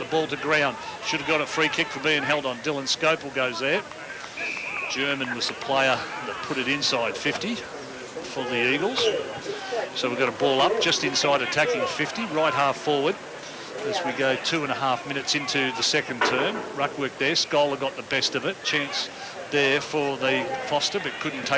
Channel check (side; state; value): both; identical; correlation 1.00